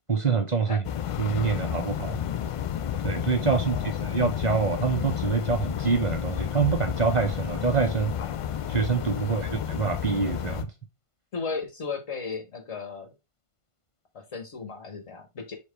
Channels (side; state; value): right; late; 1.5 ms